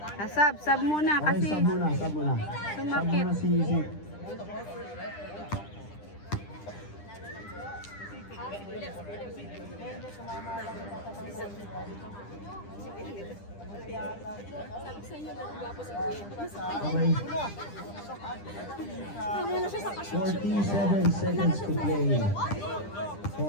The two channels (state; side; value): late; right; 10 ms